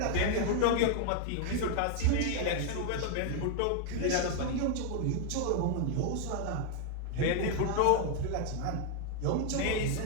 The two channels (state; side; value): different; both; correlation 0.00